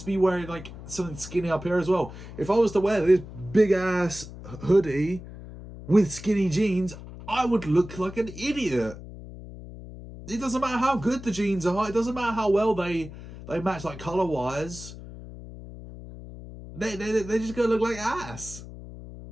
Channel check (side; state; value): left; noise; hum, 14 dB below the sound